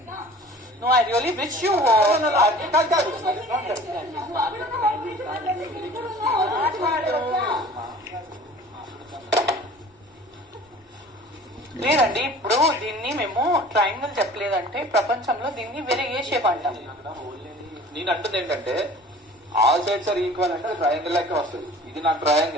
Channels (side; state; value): both; normal; correlation 0.45